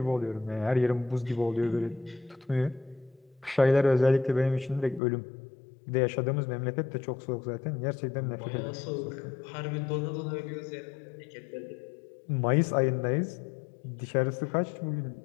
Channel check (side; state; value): right; drops out; at 5.0 s